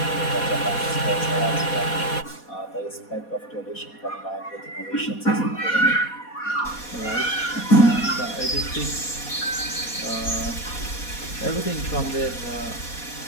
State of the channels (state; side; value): late; right; 4.2 ms